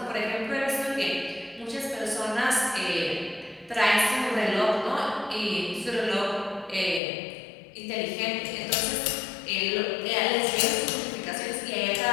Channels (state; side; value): drops out; right; at 7.0 s